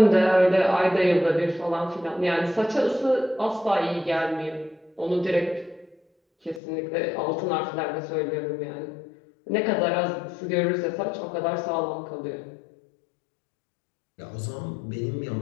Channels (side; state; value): right; drops out; at 6.6 s